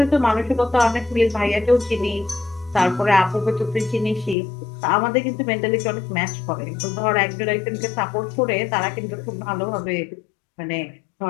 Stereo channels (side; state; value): right; drops out; at 4.4 s